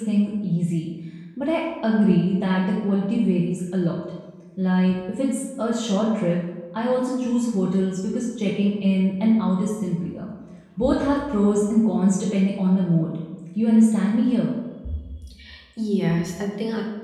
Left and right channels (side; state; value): both; identical; correlation 1.00